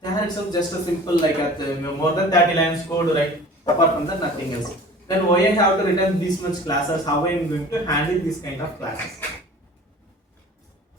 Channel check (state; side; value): normal; both; correlation 0.43